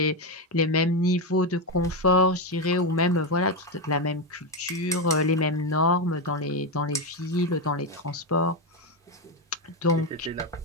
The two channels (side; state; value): both; normal; correlation 0.09